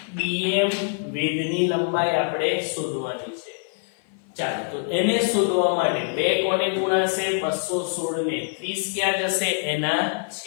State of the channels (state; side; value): silent; right; 56 dB below the other